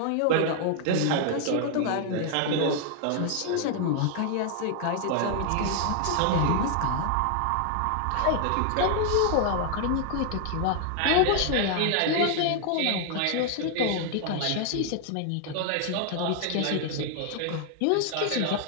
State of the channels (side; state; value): both; different; correlation 0.00